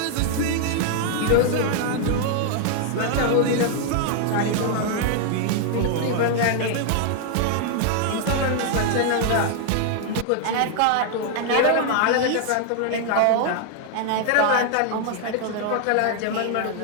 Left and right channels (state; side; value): different; both; correlation 0.00